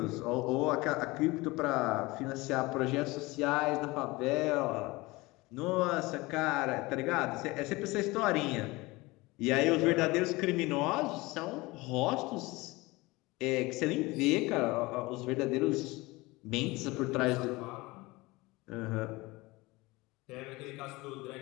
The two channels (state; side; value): quieter; right; 22.1 dB